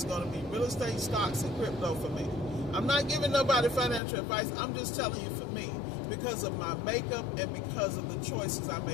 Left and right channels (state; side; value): drops out; right; at 4.0 s